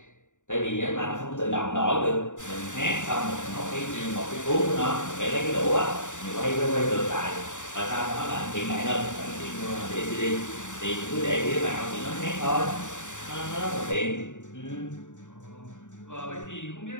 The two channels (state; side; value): late; right; 0.86 ms